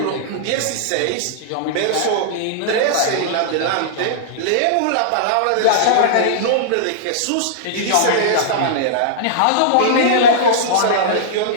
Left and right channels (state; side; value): different; both; correlation -0.02